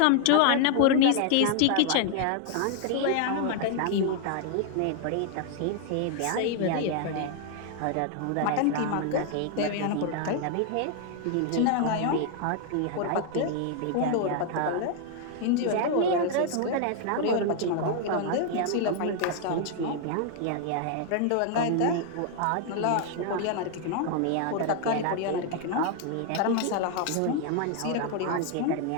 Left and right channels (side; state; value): both; different; correlation 0.00